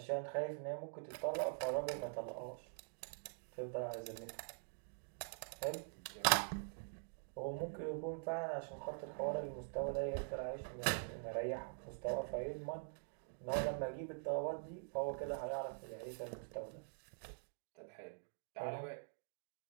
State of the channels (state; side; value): silent; left; digital silence